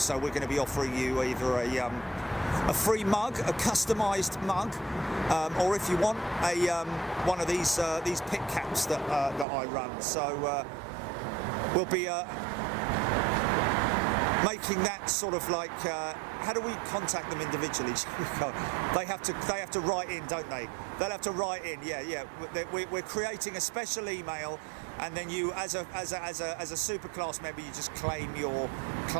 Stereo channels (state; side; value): drops out; left; at 9.5 s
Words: we're going to be offering you either a free mug, a customised mug, or if you want one of these pit caps that I run. So we'll be making that sort of like, how do we contact them individually? They have to write in, don't they? They'll have to write in. Yeah. We're creating a special email, and then you, as a super class member, you just claim your